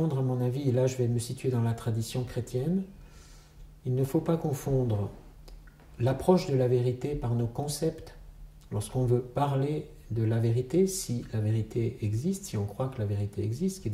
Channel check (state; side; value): identical; both; correlation 1.00